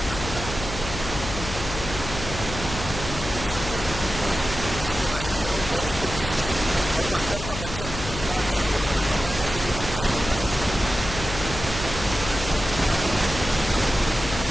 Anupam sir, first things first, please बताइए, you know, working with this team, और वो अंदर का बच्चा कितनी बार जगा, वो हमें पता है, वैसे तो दिखता ही रहता है आए दिन। इन्होंने मेरा जीना आराम कर दिया था।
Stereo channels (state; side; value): noise; left; hum, 8 dB below the sound